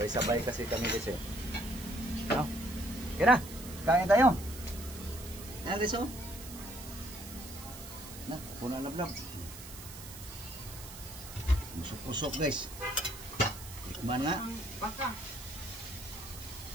kasi kami guys eh. No? Okay na. Kain tayo. Ayan guys oh. Na, puno na vlog. Pusok-pusok guys. Tikman nga. Ang baka.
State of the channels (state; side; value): noise; right; hiss, 13 dB below the sound